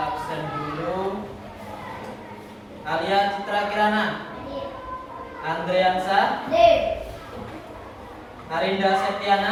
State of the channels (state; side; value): identical; both; correlation 1.00